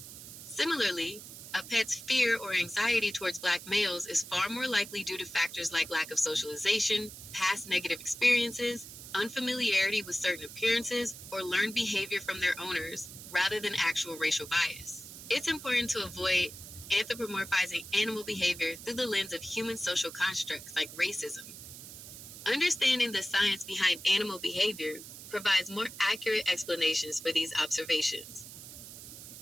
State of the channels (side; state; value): right; noise; hiss, 13 dB below the sound